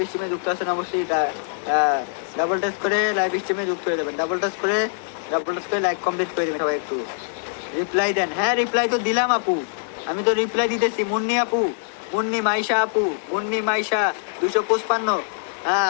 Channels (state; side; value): silent; right; digital silence